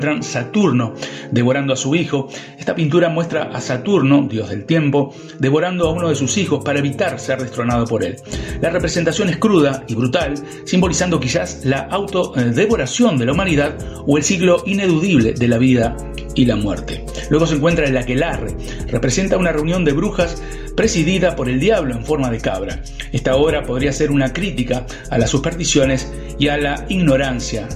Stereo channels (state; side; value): identical; both; correlation 1.00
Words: Saturno, devorando a su hijo. Esta pintura muestra a Saturno, dios del tiempo, devorando a uno de sus hijos para evitar ser destronado por él. La representación es cruda y brutal, simbolizando quizás la autodevoración de la humanidad o el ciclo ineludible de la vida y la muerte. Luego se encuentra el aquelarre, representa una reunión de brujas presidida por el diablo en forma de cabra. Esta obra podría ser una crítica a las supersticiones y a la ignorancia